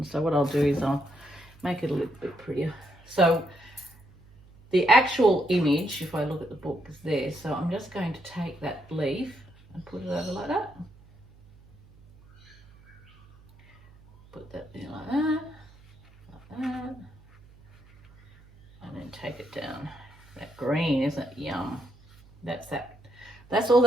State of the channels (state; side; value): noise; right; hum, 25 dB below the sound